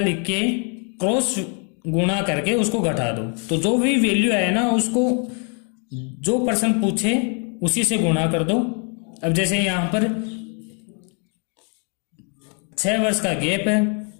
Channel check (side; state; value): right; quieter; 39.5 dB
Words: के क्रॉस गुणा करके उसको घटा दो, तो जो भी वैल्यू आए ना, उसको जो प्रश्न पूछे उसी से गुणा कर दो। अब जैसे यहां पर 6 वर्ष का गैप है,